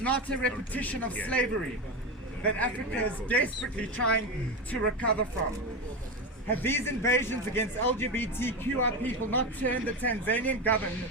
a repetition of slavery that Africa is desperately trying to recover from? Have these invasions against LGBTQI people not turned the Tanzanian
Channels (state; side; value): normal; both; correlation 0.18